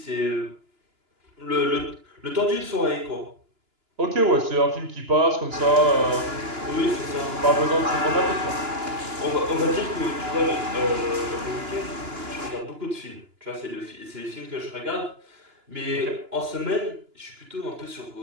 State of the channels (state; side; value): late; left; 2.9 ms